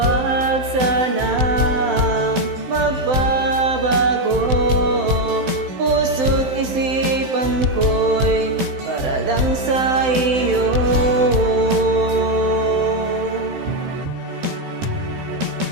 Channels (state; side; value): late; left; 16 ms